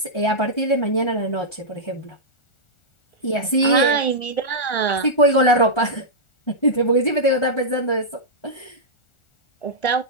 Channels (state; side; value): late; right; 1.3 ms